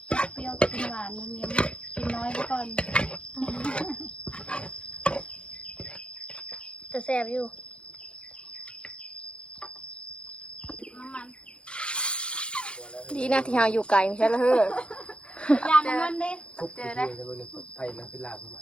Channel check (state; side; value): late; right; 0.056 ms